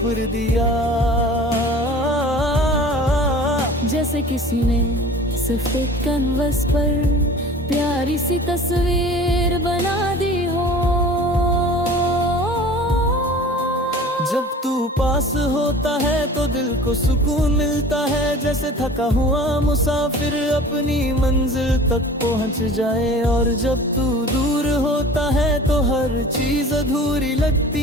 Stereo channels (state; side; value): normal; both; correlation 0.43